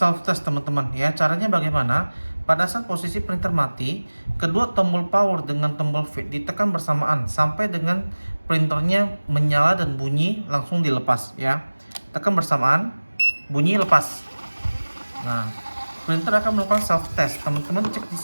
test, teman-teman ya. Caranya bagaimana? Pada saat posisi printer mati, kedua tombol power dengan tombol V ditekan bersamaan sampai dengan printernya menyala dan bunyi langsung dilepas ya. Tekan bersamaan, bunyi, lepas. Nah, printer akan melakukan self test. Teman-teman cek di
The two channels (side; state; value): both; inverted; correlation -1.00